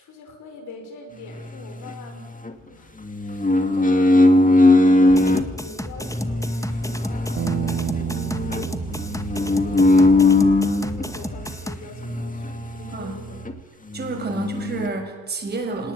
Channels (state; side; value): normal; both; correlation 0.75